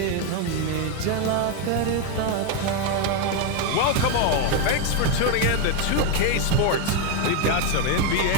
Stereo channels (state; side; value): different; both; correlation 0.02